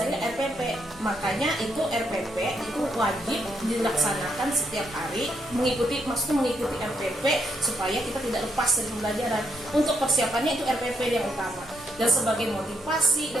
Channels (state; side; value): normal; both; correlation 0.77